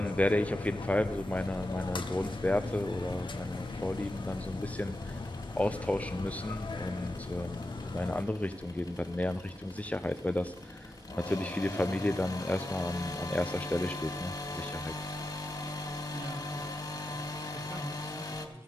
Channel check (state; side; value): normal; both; correlation 0.89